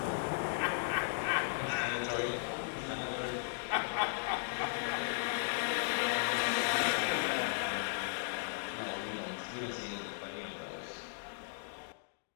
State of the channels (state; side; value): silent; right; digital silence